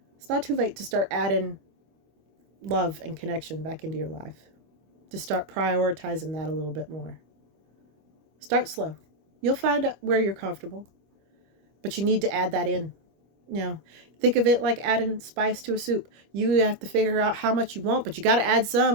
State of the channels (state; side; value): late; left; 25 ms